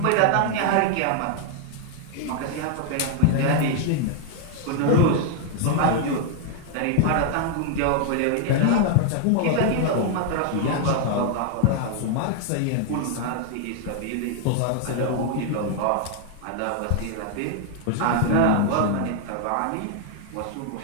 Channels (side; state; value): both; different; correlation 0.00